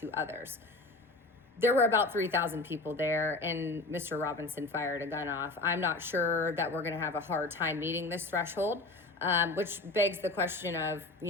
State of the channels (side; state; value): right; quieter; 3.2 dB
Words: others. There were about 3,000 people there, and Mr. Robinson fired a gun off. I'm not sure that we're going to have a hard time meeting this threshold, which begs the question of,